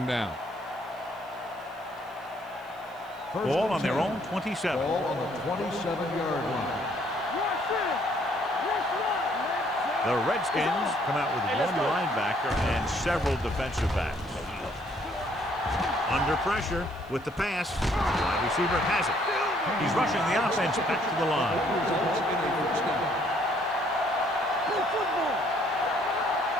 down. Ball on their own 27. Ball on the 27-yard line. The Redskins come out with one linebacker and several defensive backs. Under pressure with the pass. Wide receiver has it. He's rushing the offense back to the line.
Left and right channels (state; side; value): noise; right; hiss, 29 dB below the sound